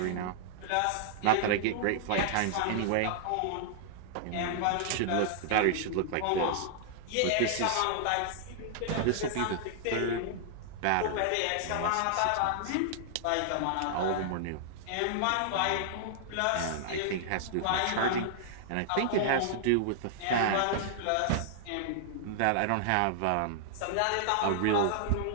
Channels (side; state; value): both; different; correlation -0.01